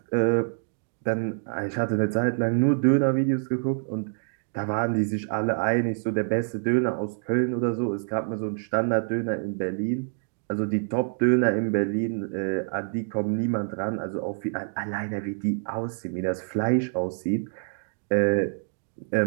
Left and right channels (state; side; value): silent; left; digital silence